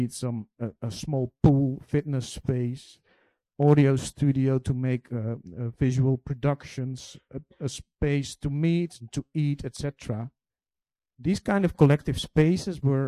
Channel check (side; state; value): both; identical; correlation 1.00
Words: a small pool, fitness space, audio studio to make visual productions, a space to meet and to eat, etc. These kind of collective spaces